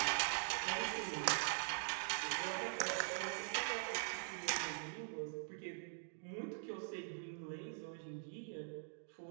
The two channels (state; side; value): silent; left; digital silence